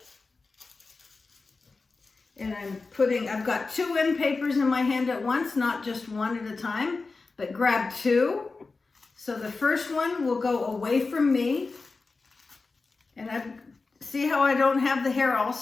And I've got 2 end papers in my hand at once, not just one at a time, but grab 2. So the first one will go away from me. And see how I don't have the hair all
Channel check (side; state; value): right; quieter; 4.0 dB